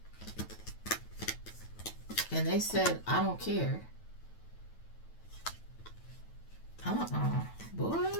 And they said, I don't care. Boy.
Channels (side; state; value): right; late; 9.1 ms